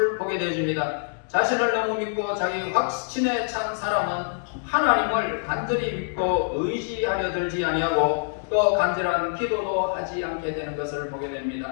보게 되어집니다. 자신을 너무 믿고 자기 확신에 찬 사람은 하나님을 간절히 믿고 의지하려 들지 아니하고 또 간절한 기도도 하지 않게 되는 것을 보게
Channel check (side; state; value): right; silent; digital silence